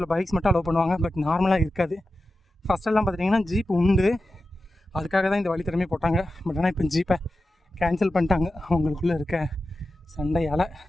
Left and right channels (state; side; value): normal; both; correlation 0.92